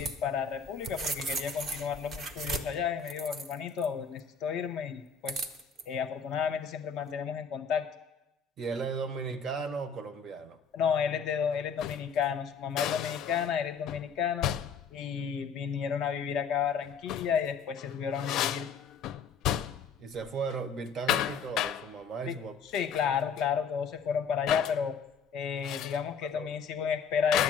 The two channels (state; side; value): quieter; right; 6.0 dB